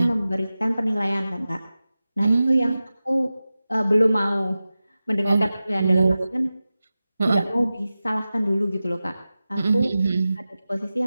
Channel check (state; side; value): inverted; both; correlation -0.95